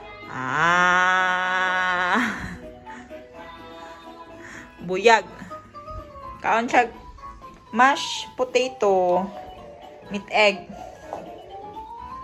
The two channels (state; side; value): identical; both; correlation 1.00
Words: Buyag. Kaon siya mashed potato, meat egg.